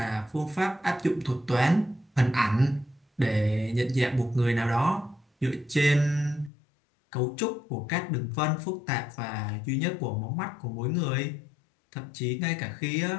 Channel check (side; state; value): right; drops out; at 6.5 s